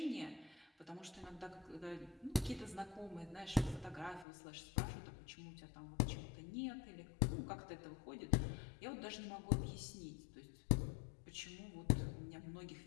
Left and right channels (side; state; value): right; drops out; at 4.2 s